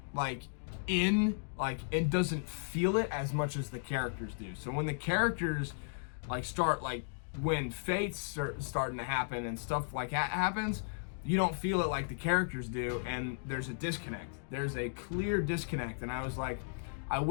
like, it doesn't feel it as much as the characters do. So when the characters, like, start, like, when fates start starting to happen and stuff like that happens, you don't feel it like the characters do, and there's a disconnect. There's a clear disconnect, and I was like, I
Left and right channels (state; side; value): silent; right; digital silence